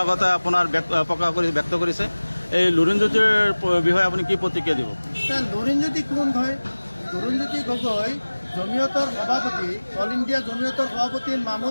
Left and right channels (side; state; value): both; inverted; correlation -1.00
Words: আপোনাৰ প্ৰকাশ কৰি ব্যক্ত কৰিছে এই লুৰিণজ্যোতিৰ বিষয়ে আপুনি কি প্ৰতিক্ৰিয়া দিব? লুৰিণজ্যোতি কোন হয়? লুৰিণজ্যোতি গগৈ জমিয়তৰ সভাপতি, অল ইণ্ডিয়া জমিয়তৰ সভাপতি